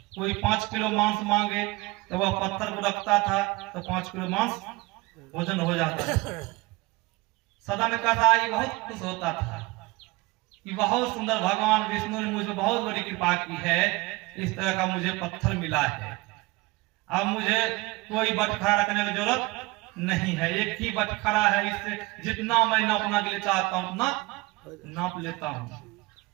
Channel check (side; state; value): left; quieter; 22.8 dB